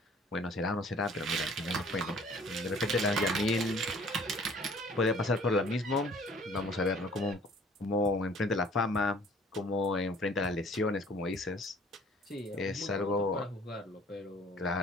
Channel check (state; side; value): normal; both; correlation 0.54